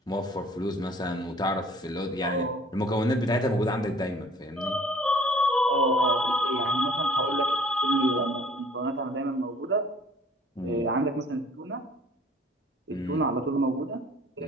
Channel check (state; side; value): normal; both; correlation 0.54